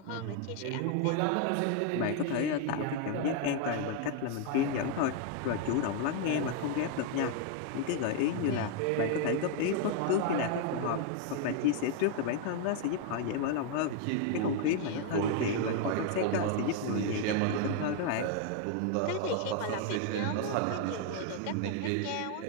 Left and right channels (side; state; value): both; different; correlation 0.00